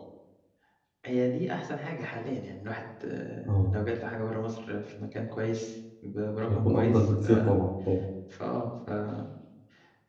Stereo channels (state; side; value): identical; both; correlation 1.00